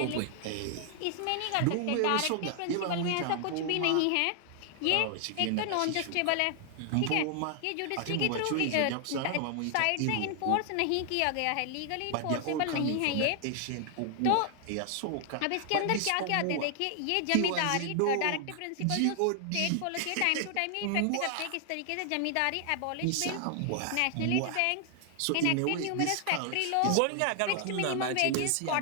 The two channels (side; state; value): both; different; correlation 0.00